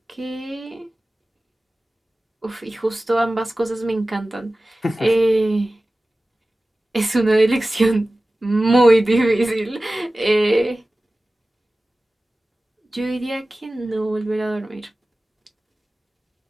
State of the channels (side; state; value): both; normal; correlation 0.96